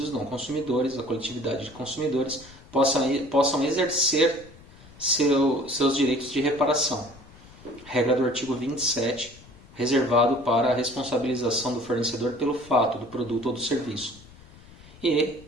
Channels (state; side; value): noise; left; rumble, 22 dB below the sound